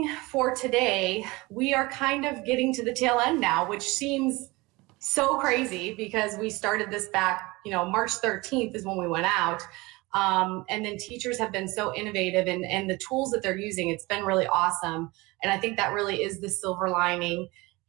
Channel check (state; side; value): quieter; left; 22.8 dB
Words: for today, we are kind of getting to the tail end now, which seems so crazy because we started this back, March 13th is when we went out. And then teachers have been so innovative and the tools that they're using, it's been really awesome. And I think that really is the silver lining